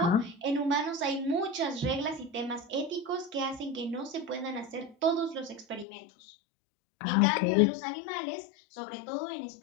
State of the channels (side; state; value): right; drops out; at 5.9 s